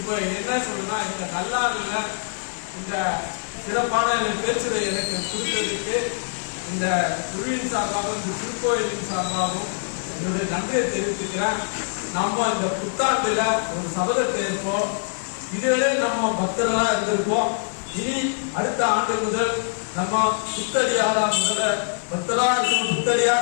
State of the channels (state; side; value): silent; right; 63 dB below the other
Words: என்ன சொல்றேன்னா, இந்த நல்லாறுல இந்த சிறப்பான பேச்சுரை எனக்கு கொடுத்ததுக்கு இந்த குழுவின் சார்பாகவும் இந்த திருக்கோயிலின் சார்பாகவும் என்னுடைய நன்றியை தெரிவித்துக்கிறேன். நாம இந்த புத்தாண்டுல ஒரு சபதத்தை ஏற்போம். இதுவரை நம்ம பக்தர்களா இருந்திருப்போம். இனி அடுத்த ஆண்டு முதல் நம்ம புத்தடியாரா பக்தரா இருக்கணும்,